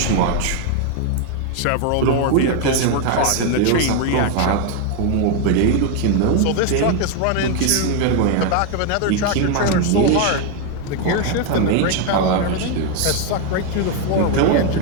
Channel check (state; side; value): different; both; correlation 0.01